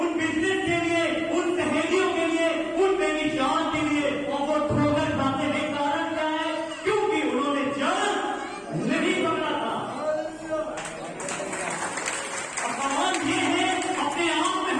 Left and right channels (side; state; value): both; identical; correlation 1.00